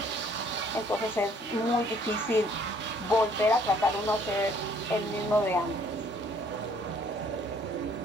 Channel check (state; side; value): normal; both; correlation 0.61